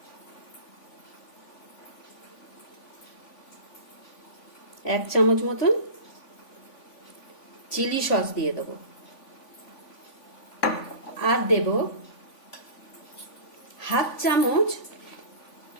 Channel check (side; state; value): right; late; 3.5 ms